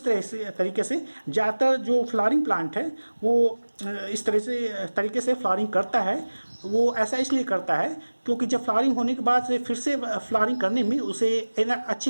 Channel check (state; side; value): inverted; both; correlation -1.00